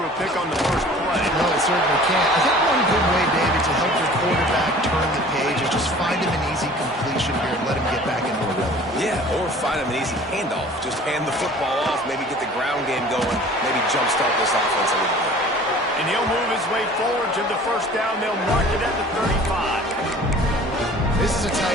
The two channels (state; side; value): normal; both; correlation 0.47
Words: a pick on the first play. No, it certainly can't. I think one good way, David, to help your quarterback turn the page is just find him an easy completion here and let him get back into a rhythm. Yeah, or find him an easy handoff. Just hand the football off, maybe get the ground game going, maybe jumpstart this offense a little bit. And he'll move his way forward to the first down. They'll mark it at the 35. This is a